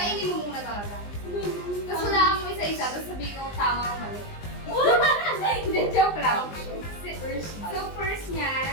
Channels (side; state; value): right; late; 20 ms